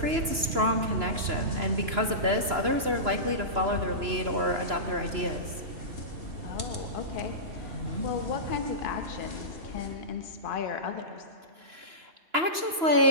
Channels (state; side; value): late; left; 2.9 ms